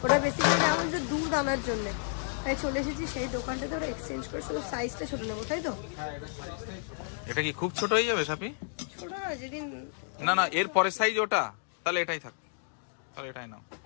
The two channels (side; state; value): right; silent; digital silence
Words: ওটা বেসিক্যালি আমাদের দুধ আনার জন্য, তাই চলে এসেছি সেই দোকানটাতে, ওরা এক্সচেঞ্জ করে শুধু সাইজটা ছোট নেবো, তাই তো? এটা কি খুব ছোট হয়ে যাবে সাপি? ছোট না, যেদিন না না এর পরের সাইজ ওটা, তাহলে এটাই থাক, তাহলে এটাই নাও।